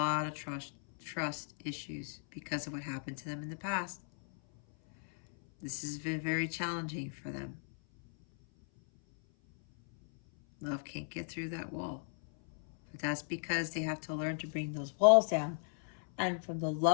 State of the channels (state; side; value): silent; right; 54 dB below the other